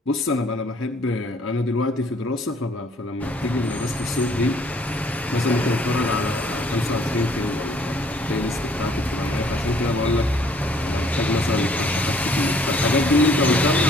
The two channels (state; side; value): normal; both; correlation 0.61